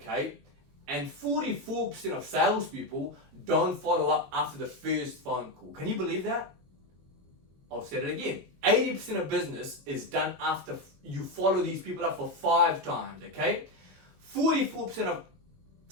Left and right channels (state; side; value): late; left; 22 ms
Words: And 44% of salespeople don't follow up after the first phone call. Can you believe that? I'll say it again. 80% of business is done after you follow these people up for 5 times, okay? 44% of